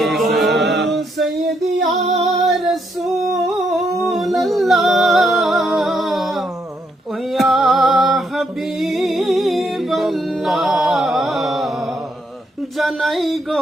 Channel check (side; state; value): both; normal; correlation 0.76